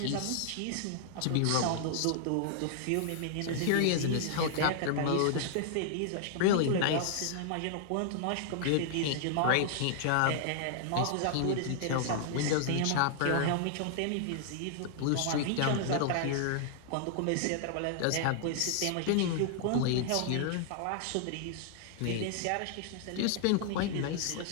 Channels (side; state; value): both; different; correlation -0.01